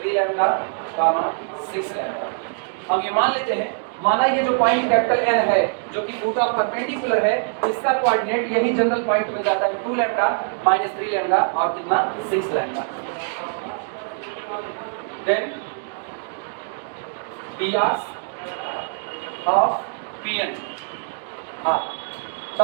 lambda 6 lambda. हम ये मान लेते हैं, माना ये जो पॉइंट कैपिटल एन है जो कि फुट ऑफ परपेंडिकुलर है, इसका कोऑर्डिनेट यही जनरल पॉइंट मिल जाता है 2 लैम्डा -3 लैम्डा और कितना 6 lambda. Then dr of pn, हाँ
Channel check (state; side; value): silent; left; 63 dB below the other